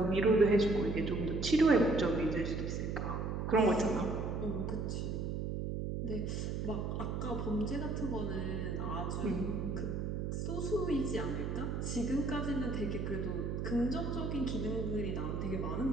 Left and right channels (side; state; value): right; noise; hum, 2 dB below the sound